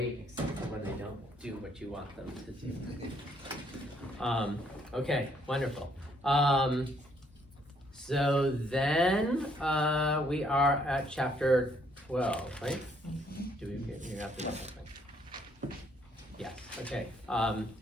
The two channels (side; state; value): both; normal; correlation 0.68